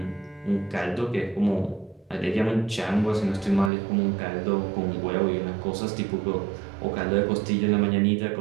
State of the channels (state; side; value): drops out; left; at 3.7 s